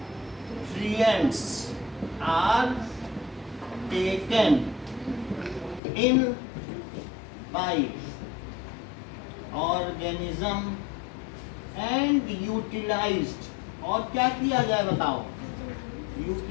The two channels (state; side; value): drops out; right; at 5.8 s